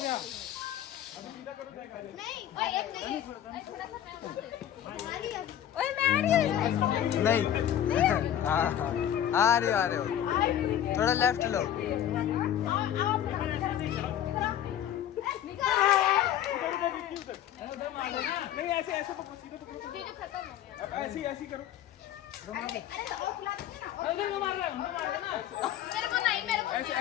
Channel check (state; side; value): quieter; right; 10.9 dB